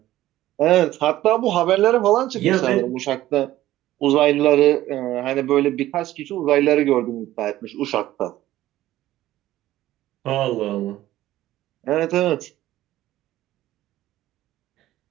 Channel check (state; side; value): quieter; left; 14.7 dB